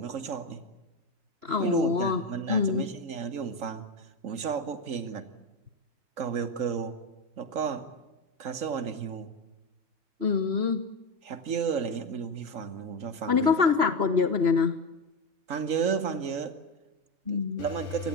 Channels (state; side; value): late; left; 3.8 ms